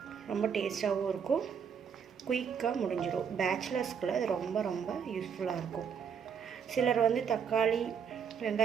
ரொம்ப டேஸ்ட்டாகவும் இருக்கும், குயிக்காக முடிஞ்சிடும். பேச்சுலர்ஸ்க்குள்ள இது ரொம்ப ரொம்ப யூஸ்ஃபுல்லாக இருக்கும். சிலர் வந்து தக்காளி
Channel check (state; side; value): quieter; left; 7.1 dB